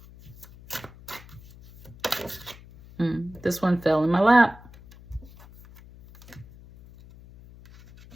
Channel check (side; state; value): left; noise; hum, 21 dB below the sound